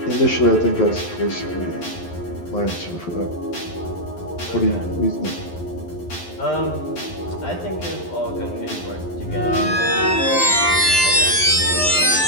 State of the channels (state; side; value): late; right; 11 ms